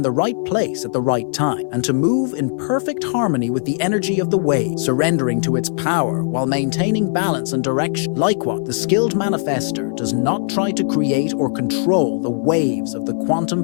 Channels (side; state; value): right; silent; 56 dB below the other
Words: the right place at the right time, and to move in perfect harmony with the energy of the wave, surrendering to its power while maintaining balance and direction. Likewise, the skilled manifester does not try to create or control the waves of the quantum